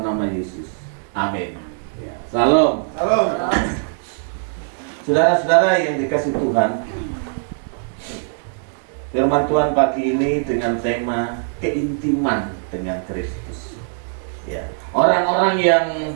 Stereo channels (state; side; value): silent; left; digital silence